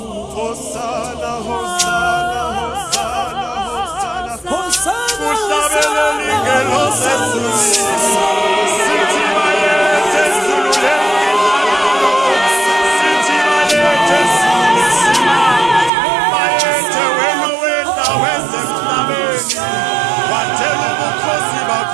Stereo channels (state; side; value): drops out; left; at 15.9 s